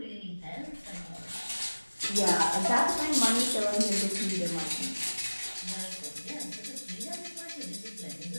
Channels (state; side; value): inverted; both; correlation -1.00